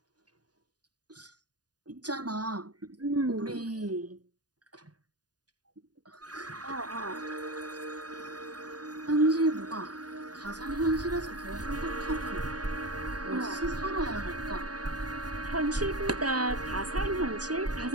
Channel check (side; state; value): left; late; 0.68 ms